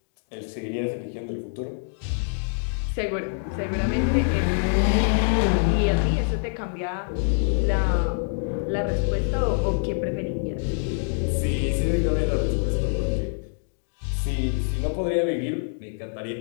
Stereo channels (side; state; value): right; silent; digital silence